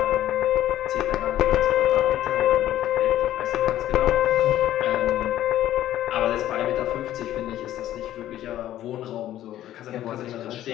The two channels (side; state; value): right; quieter; 12.9 dB